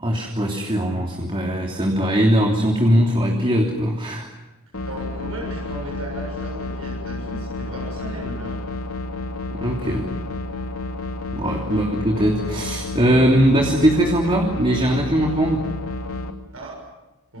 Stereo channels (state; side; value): normal; both; correlation 0.70